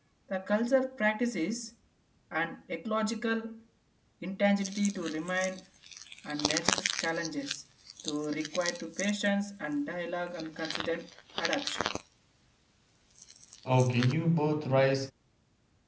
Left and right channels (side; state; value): both; identical; correlation 1.00